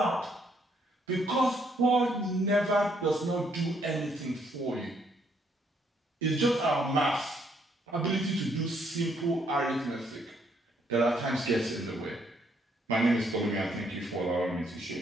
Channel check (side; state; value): both; normal; correlation 0.70